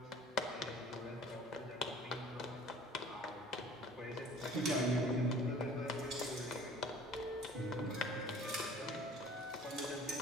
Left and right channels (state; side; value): normal; both; correlation 0.48